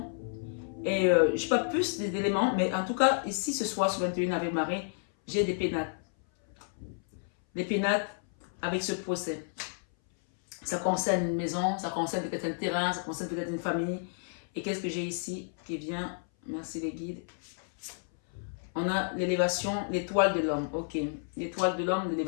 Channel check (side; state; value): right; silent; 57 dB below the other